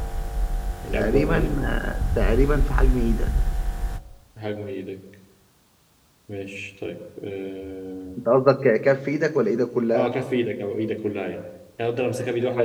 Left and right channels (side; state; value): both; identical; correlation 1.00